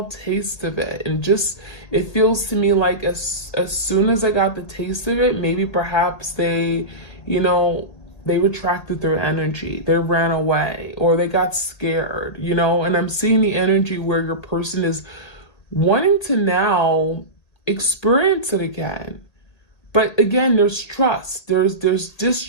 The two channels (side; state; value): right; late; 1.8 ms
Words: taste of it. And it feels to me like as soon as I got the taste of it, maybe perhaps they retracted their energy, they ran away, or they got scared, and I'm seeing the energy where your person is wanting to now experience it again. But again, there's trust, there's